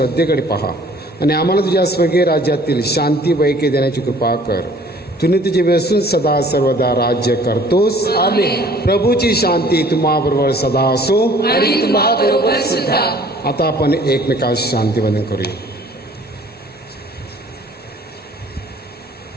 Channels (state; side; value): normal; both; correlation 0.54